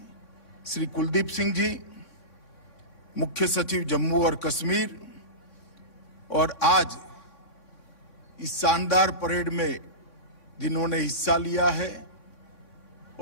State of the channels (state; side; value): late; right; 3.6 ms